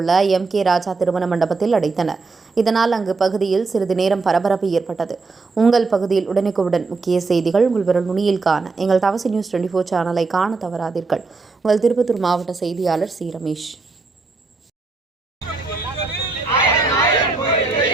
உள்ள MK ராஜா திருமண மண்டபத்தில் அடைத்தனர். இதனால் அங்கு பகுதியில் சிறிது நேரம் பரபரப்பு ஏற்பட்டது. உங்கள் பகுதியில் உடனுக்குடன் முக்கிய செய்திகள் உங்கள் விரல் நுனியில் காண எங்கள் தவசி நியூஸ் 24 சேனலை காண தவறாதீர்கள். உங்கள் திருப்பத்தூர் மாவட்ட செய்தியாளர் சி. ரமேஷ்.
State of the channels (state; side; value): quieter; left; 4.0 dB